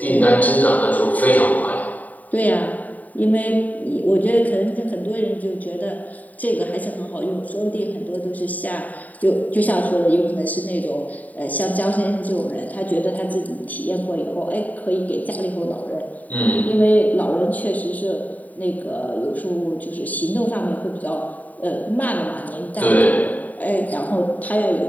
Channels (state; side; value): late; right; 0.075 ms